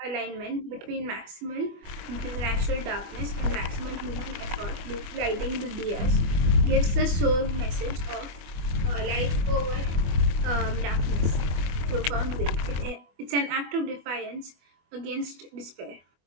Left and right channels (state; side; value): late; left; 24 ms